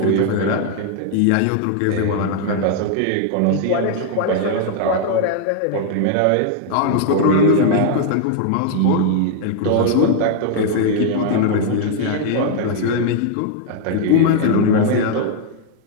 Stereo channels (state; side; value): different; both; correlation 0.00